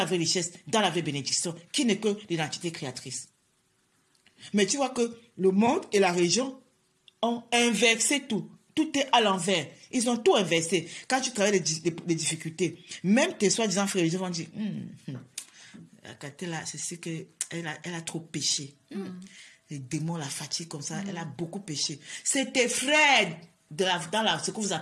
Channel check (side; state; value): both; identical; correlation 1.00